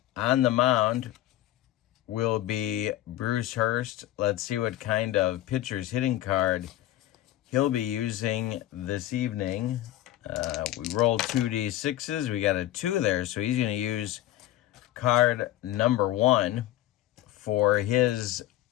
the mound will be Bruce Hurst. Let's see what kind of pitcher's hitting card he'll be using this evening. We rolled 2d6s. We got a 2 there, so he's going to use card number 1 for his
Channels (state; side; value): quieter; right; 14.4 dB